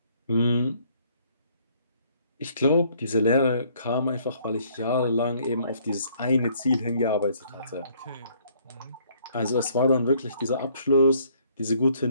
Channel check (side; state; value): both; inverted; correlation -0.63